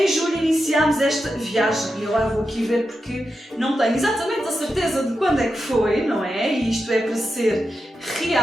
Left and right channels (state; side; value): normal; both; correlation 0.88